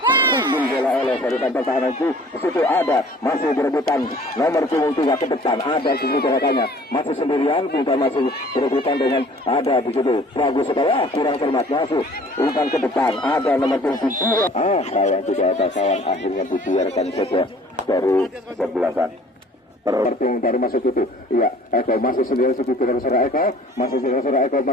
sundul bola oleh barisan pertahanan itu situ ada masih berebutan nomor punggung 3 ke depan ada di situ rekannya masih sendirian kita masih berebutan dengan ada di situ bagus sekali kurang cermat masuk umpan ke depan ada nomor punggung 2 sayang tidak ada kawan akhirnya dibiarkan saja dari sebelasan terting dari masuk itu iya Eko masih sendiri situ tidak serah Eko masih serah Eko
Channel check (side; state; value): both; normal; correlation 0.51